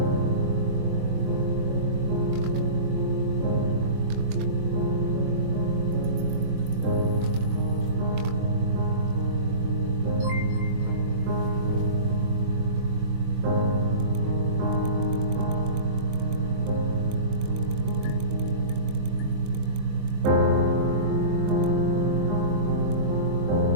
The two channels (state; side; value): late; left; 23 ms